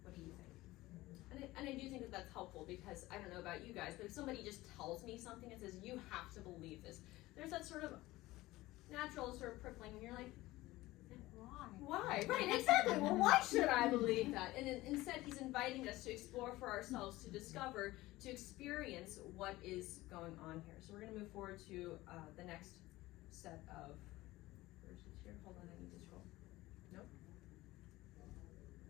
What do you think? And I do think that that's helpful because I don't know about you guys, but if somebody just tells me something and says, you have to believe this, there's that sort of natural sort of prickling and you're like, why? Right, exactly. Well, why should I believe that? And instead, he's inviting us to explore for ourselves, to discover, to experience what is going on here. So we're going to move forward to the next set of verses here. Hold on, I need to scroll. Nope.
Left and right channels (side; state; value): right; quieter; 18.3 dB